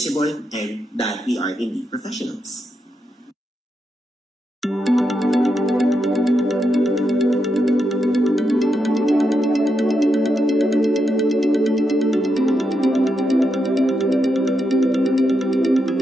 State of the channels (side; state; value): both; normal; correlation 0.84